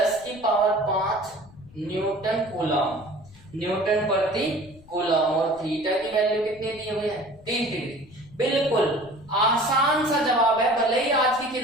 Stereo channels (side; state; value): left; noise; rumble, 24 dB below the sound